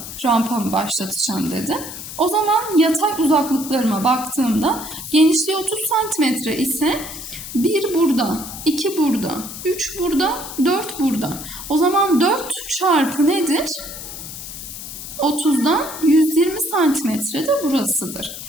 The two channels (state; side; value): noise; left; hiss, 10 dB below the sound